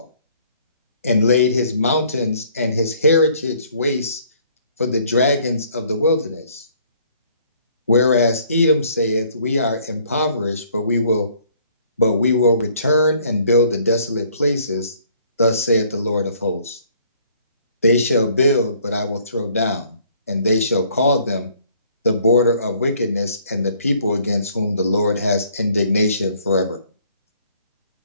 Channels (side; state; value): both; inverted; correlation -0.60